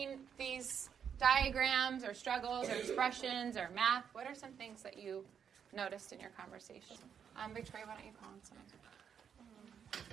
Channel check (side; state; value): left; quieter; 7.7 dB